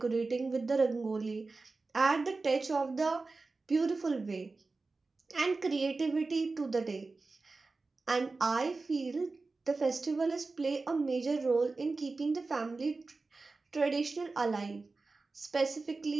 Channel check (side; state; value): left; quieter; 3.7 dB